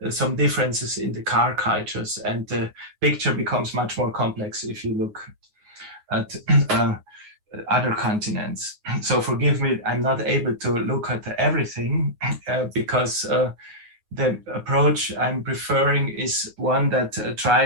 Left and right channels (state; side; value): late; left; 9.5 ms